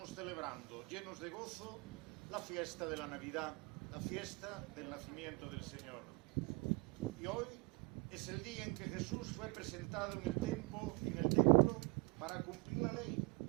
celebrando, llenos de gozo, la fiesta de la Navidad, la fiesta del nacimiento del Señor. Y hoy es el día en que Jesús fue presentado en el templo para cumplir la ley,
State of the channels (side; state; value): left; quieter; 29.1 dB